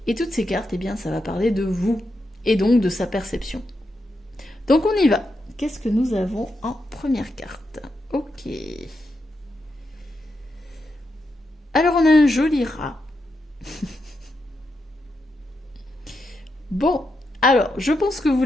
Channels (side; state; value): both; normal; correlation 0.85